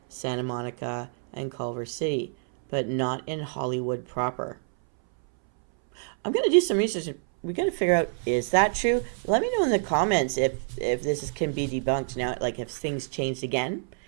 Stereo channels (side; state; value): left; silent; 60 dB below the other